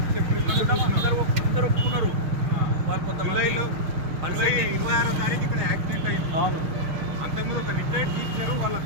April అందరూ ఒప్పుకున్నారు. జూలై 26వ తారీఖు ఇక్కడ యాక్సిడెంట్ అయింది. అవును, అంతకుముందు ఒక రిటైర్డ్ టీచర్ వాళ్ళ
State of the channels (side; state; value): left; late; 6.0 ms